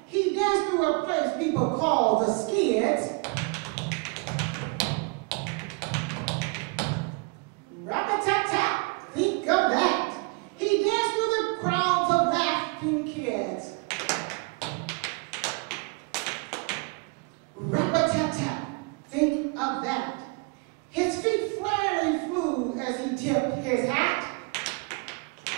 He danced through a place people call the Skids. Rap-a-tap-tap, think of that. He danced through the crowds of laughing kids. Rap-a-tap-tap, think of that. His feet fairly flew as he tipped his hat.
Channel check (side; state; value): left; quieter; 30.7 dB